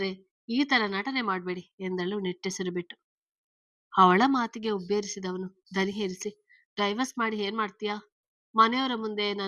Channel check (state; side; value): identical; both; correlation 1.00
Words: ಈ ತರ ನಟನೆ ಮಾಡ್ಬೇಡಿ ಎಂದಳು ನಿಟ್ಟುಸಿರು ಬಿಟ್ಟು. ಅವಳ ಮಾತಿಗೆ ಉಬ್ಬೇರಿಸಿದವನು ದನಿ ಹೇರಿಸಿ, ಡೈವರ್ಸ್ ಮಾಡಿ ಏನ್ ಮಾಡ್ತೀಯಾ? ಮನೆಯವರ ಮುಂದೆ